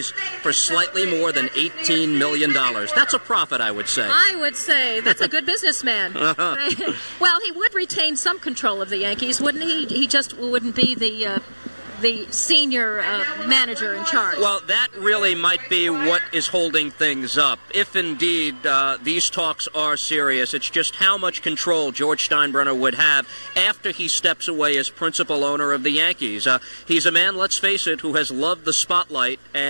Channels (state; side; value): inverted; both; correlation -1.00